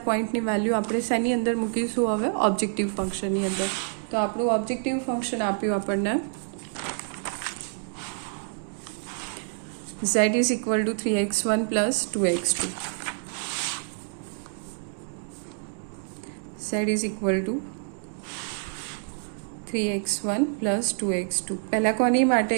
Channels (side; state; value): left; silent; digital silence